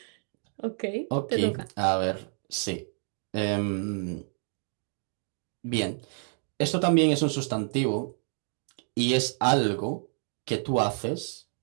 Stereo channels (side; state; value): left; silent; 58 dB below the other